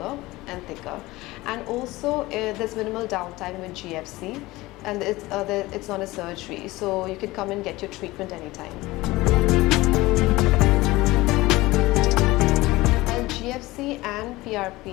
and thicker. And also there's minimal downtime with GFC, and it's not a surgery, so you can come and get your treatment anytime. GFC and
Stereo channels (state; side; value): quieter; right; 19.6 dB